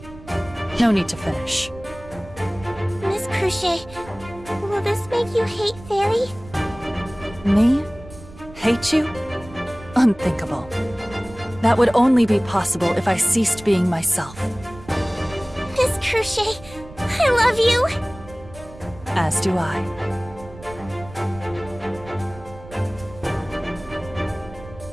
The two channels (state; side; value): noise; right; rumble, 18 dB below the sound